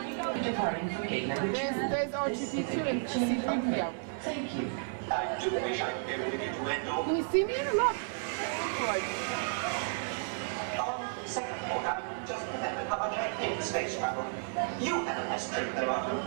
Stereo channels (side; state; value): left; silent; 56 dB below the other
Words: departing from gate number 2. There's R2D2 and C3PO. Thank you. I do wish I could be able to get to Endo. Can you see me? Look. Second thought, I just remembered how much I hate space travel. You had a nice trip there, Arthur.